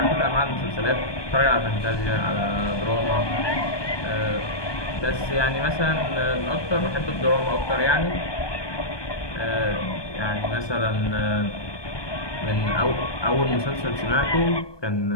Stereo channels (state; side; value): late; right; 1.2 ms